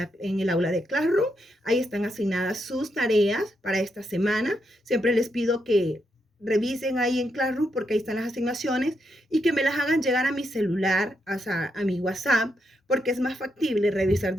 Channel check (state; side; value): normal; both; correlation 0.81